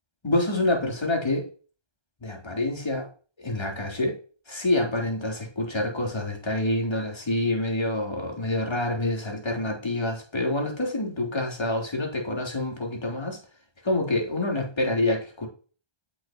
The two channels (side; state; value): right; late; 1.3 ms